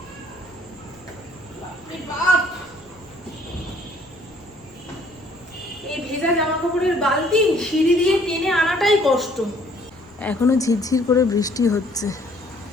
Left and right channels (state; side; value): noise; left; rumble, 29 dB below the sound